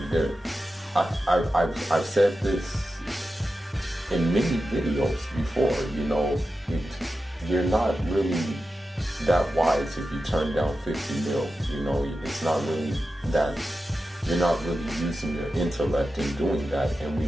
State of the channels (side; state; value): both; normal; correlation 0.92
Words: I've said this in many videos before. You know, you're not really that wise if you turn down 50 mil. You know, it's not really that. You're not really using your intellect in doing that, and we